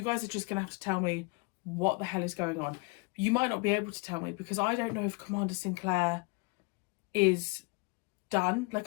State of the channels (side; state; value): right; quieter; 28.3 dB